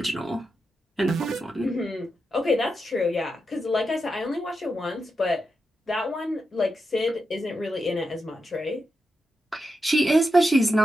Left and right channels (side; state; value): both; normal; correlation 0.87